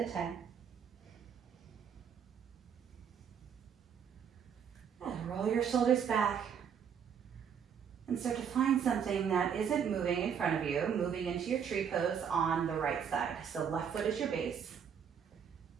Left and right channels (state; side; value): quieter; left; 7.6 dB